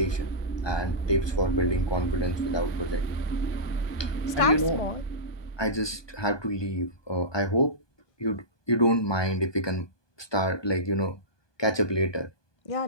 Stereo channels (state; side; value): late; right; 1.2 ms